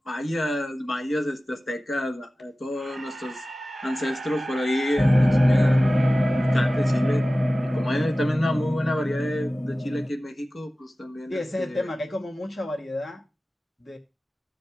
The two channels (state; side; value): normal; both; correlation 0.96